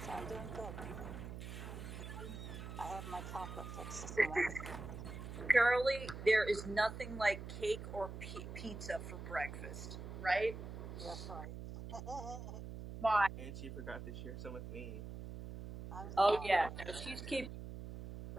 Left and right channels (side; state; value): right; noise; hum, 9 dB below the sound